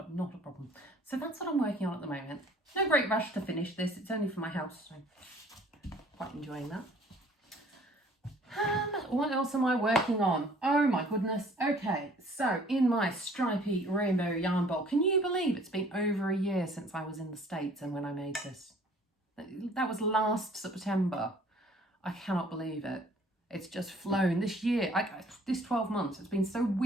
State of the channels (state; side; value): normal; both; correlation 0.55